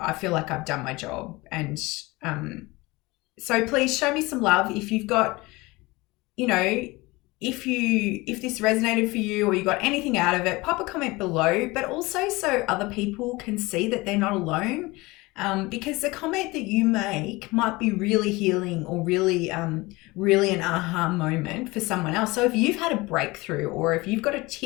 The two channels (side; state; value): right; quieter; 22.3 dB